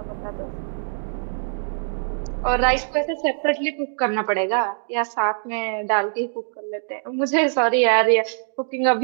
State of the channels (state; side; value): silent; left; digital silence